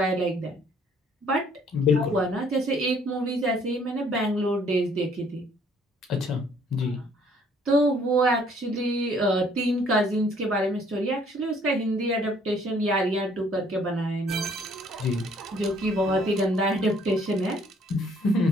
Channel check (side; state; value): both; normal; correlation 0.61